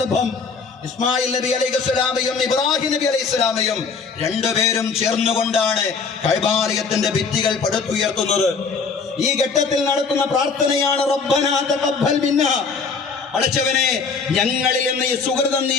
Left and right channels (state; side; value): quieter; right; 5.1 dB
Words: ഇസ്മായിൽ നബി അലൈഹിസ്സലാമയും ഇബ്രാഹിം നബി അലൈഹിസ്സലാമയും രണ്ടുപേരും ചേർന്നുകൊണ്ടാണ് കഅബാലയത്തിന്റെ ഭിത്തികൾ പടുത്തുയർത്തുന്നത്. ഈ ഘട്ടത്തിൽ നടത്തുന്ന പ്രാർത്ഥനയാണ് റബ്ബനാ തഖബ്ബൽ മിന്നാ, പടച്ചവനെ ഞങ്ങളിൽ നിന്ന് ഈ സുഹൃതം നീ